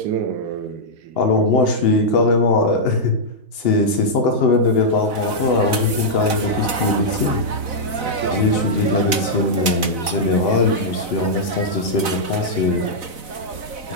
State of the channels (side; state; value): left; late; 4.0 ms